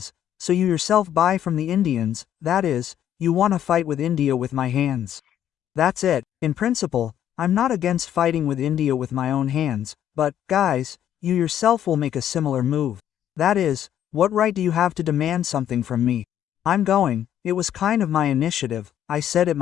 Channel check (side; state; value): right; quieter; 10.6 dB